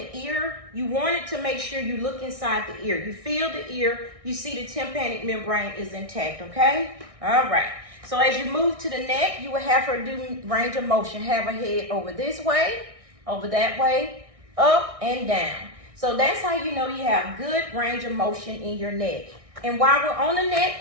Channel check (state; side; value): late; left; 1.6 ms